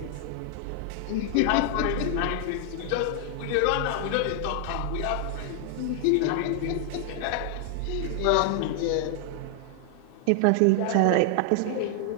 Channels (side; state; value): both; different; correlation 0.00